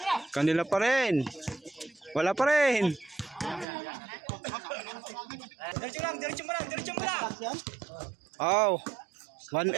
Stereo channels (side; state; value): left; drops out; at 3.7 s